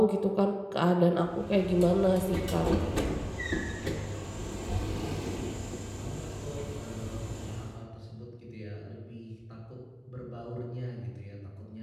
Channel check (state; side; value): identical; both; correlation 1.00